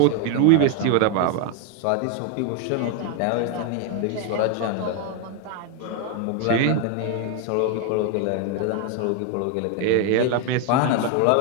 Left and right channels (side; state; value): both; different; correlation 0.01